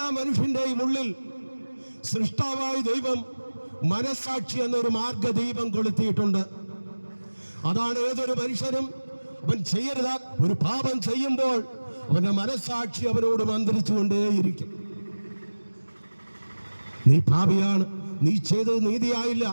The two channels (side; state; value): both; inverted; correlation -1.00